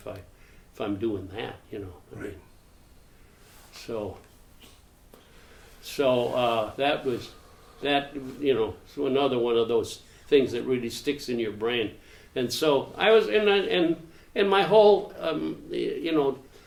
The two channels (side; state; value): both; identical; correlation 1.00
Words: I'm doing that, I mean. So that was so another one of those things that really sticks in your brain. And so I was in my whole